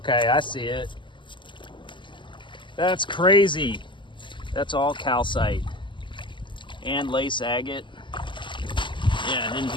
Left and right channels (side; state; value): right; late; 0.24 ms